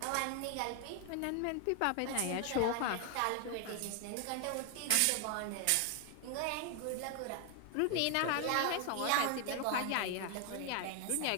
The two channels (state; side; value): different; both; correlation 0.00